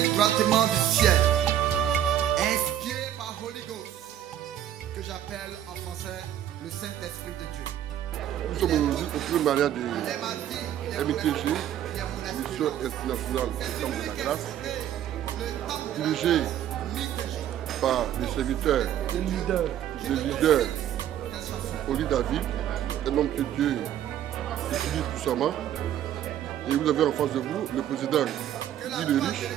droitement du ciel, inspirée par Holy Ghost, que j'appelle en français le Saint-Esprit de Dieu. Nous sommes aujourd'hui au premier mariage de MITG, Mission Internationale du Temple de la Grâce, dirigée par les serviteurs, les leaders, Oli David, un homme que Dieu utilise puissamment. Et vous avez en face de vous le président Guy le Riche,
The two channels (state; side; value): quieter; left; 11.1 dB